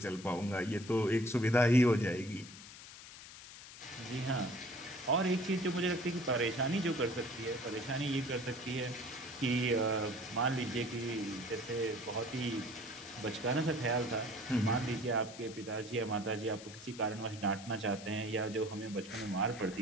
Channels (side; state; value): left; noise; hiss, 15 dB below the sound